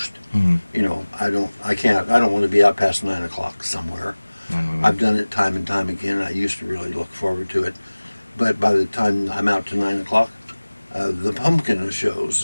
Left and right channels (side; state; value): both; inverted; correlation -1.00